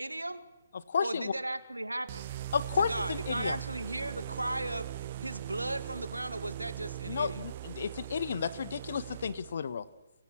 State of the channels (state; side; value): inverted; both; correlation -0.78